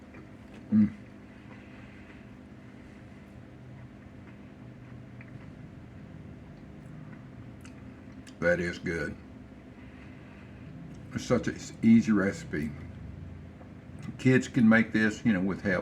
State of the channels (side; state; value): both; identical; correlation 1.00